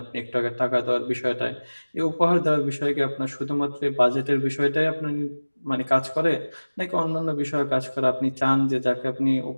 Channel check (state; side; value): inverted; both; correlation -1.00